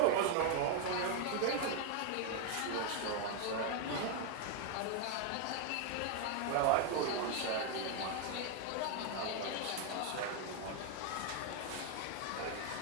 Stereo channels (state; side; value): different; both; correlation 0.00